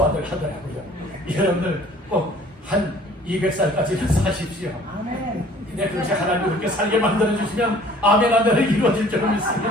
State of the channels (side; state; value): both; normal; correlation 0.52